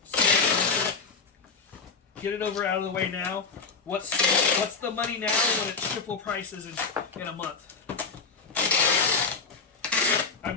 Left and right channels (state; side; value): quieter; right; 4.9 dB